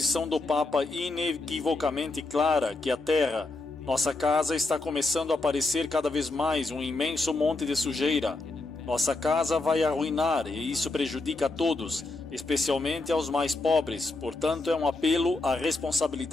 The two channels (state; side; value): quieter; right; 3.2 dB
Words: do Papa inequivocamente clara que a Terra, nossa casa, está começando a parecer cada vez mais um imenso monte de sujeira. Nossa casa vai arruinar e isso prejudica a todos, especialmente aos mais pobres, portanto é um apelo à